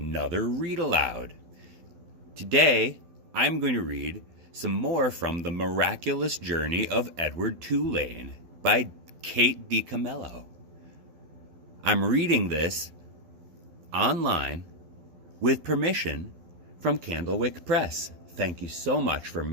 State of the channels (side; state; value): left; late; 12 ms